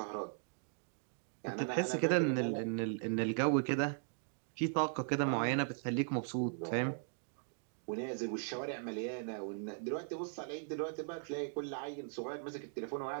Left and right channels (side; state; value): left; silent; digital silence